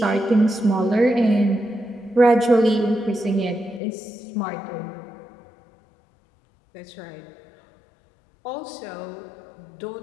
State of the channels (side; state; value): right; drops out; at 3.8 s